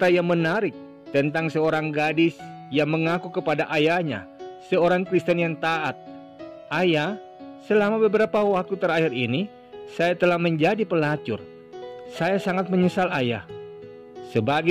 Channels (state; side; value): identical; both; correlation 1.00